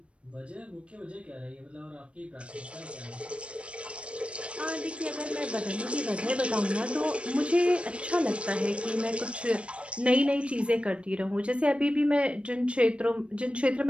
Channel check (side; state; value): left; late; 0.060 ms